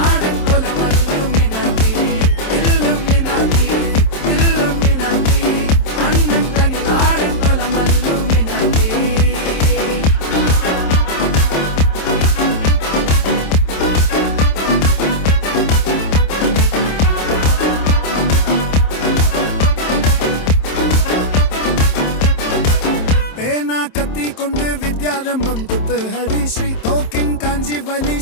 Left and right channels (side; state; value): right; late; 27 ms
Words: கத்தி கொண்டு வித்யாரம்பம் குத்து ஹரி ஸ்ரீ தோக்கின் காஞ்சி வலி